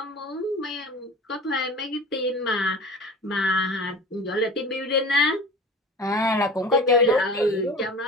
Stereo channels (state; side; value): normal; both; correlation 0.38